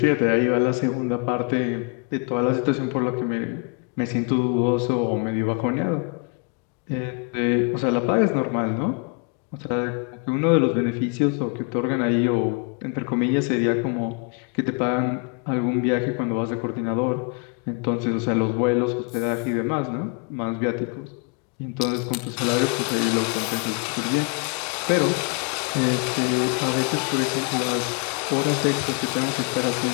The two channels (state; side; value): quieter; right; 31.7 dB